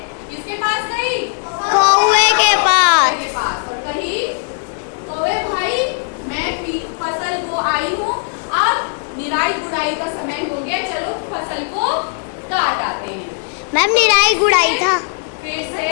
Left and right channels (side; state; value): right; silent; digital silence